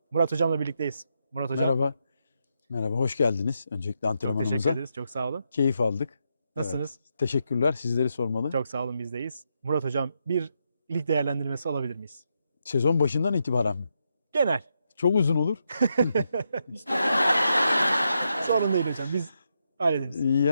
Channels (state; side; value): inverted; both; correlation -0.82